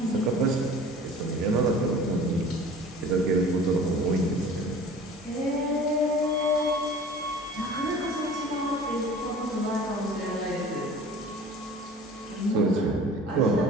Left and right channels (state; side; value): normal; both; correlation 0.44